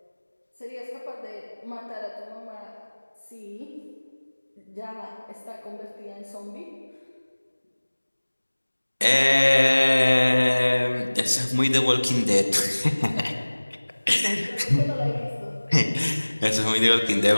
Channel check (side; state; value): both; inverted; correlation -1.00